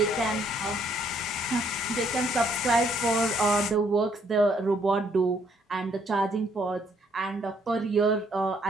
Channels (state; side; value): normal; both; correlation 0.68